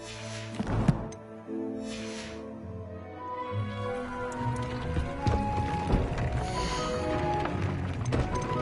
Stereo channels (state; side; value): identical; both; correlation 1.00